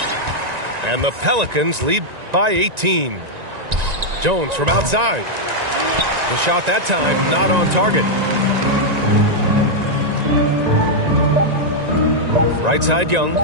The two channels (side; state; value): left; late; 1.9 ms